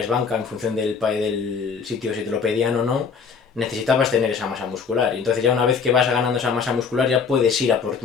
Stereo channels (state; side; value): quieter; right; 5.8 dB